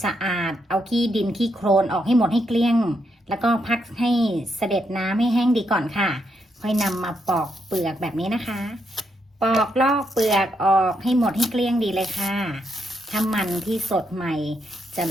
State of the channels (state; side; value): normal; both; correlation 0.79